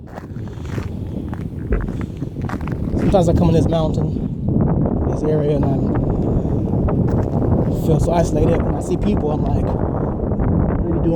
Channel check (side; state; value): both; identical; correlation 1.00